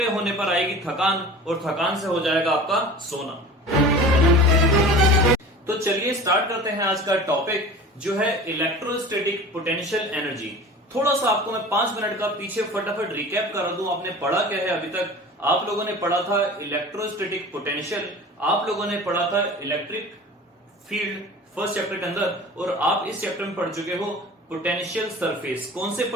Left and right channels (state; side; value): normal; both; correlation 0.38